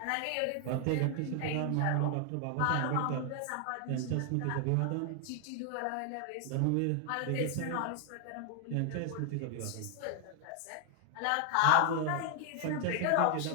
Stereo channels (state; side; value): different; both; correlation 0.00